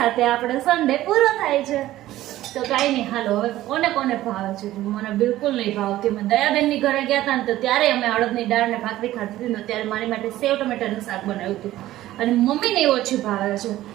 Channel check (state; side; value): quieter; left; 14.9 dB